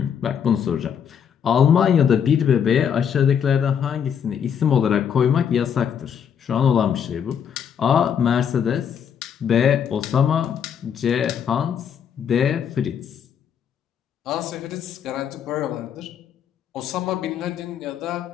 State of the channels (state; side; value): quieter; right; 8.0 dB